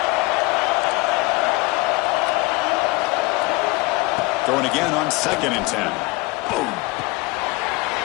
Throwing again on 2nd and 10. Boom.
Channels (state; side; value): quieter; right; 23.6 dB